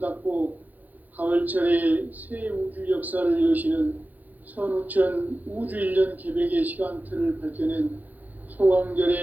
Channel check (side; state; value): left; late; 0.082 ms